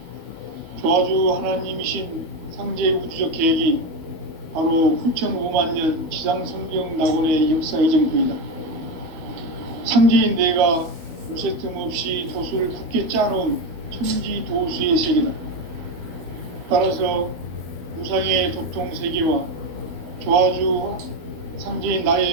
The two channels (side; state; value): left; late; 12 ms